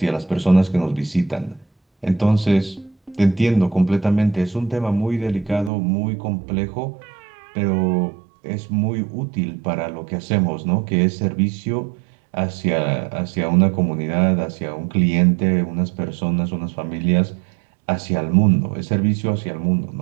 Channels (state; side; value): drops out; left; at 5.7 s